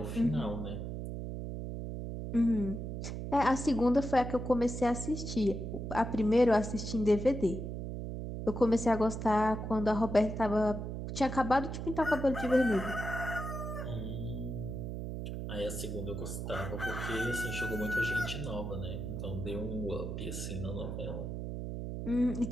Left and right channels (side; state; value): right; noise; hum, 5 dB below the sound